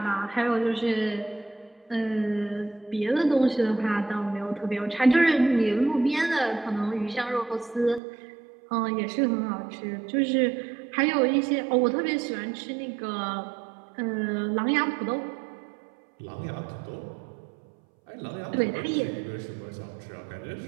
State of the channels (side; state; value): left; drops out; at 8.0 s